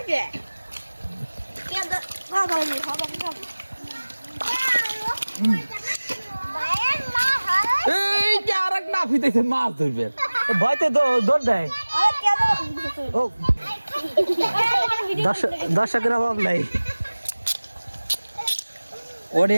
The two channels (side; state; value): both; inverted; correlation -1.00